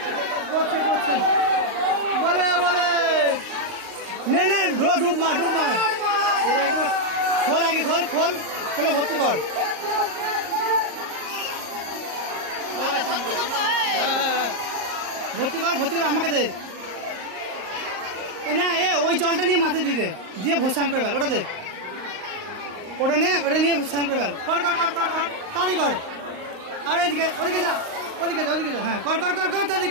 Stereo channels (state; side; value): late; left; 38 ms